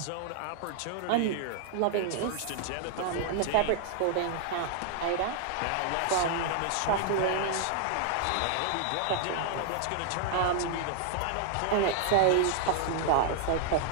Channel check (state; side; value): different; both; correlation -0.01